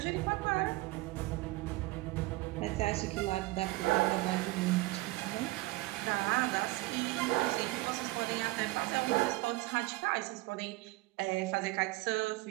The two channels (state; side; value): quieter; left; 20.5 dB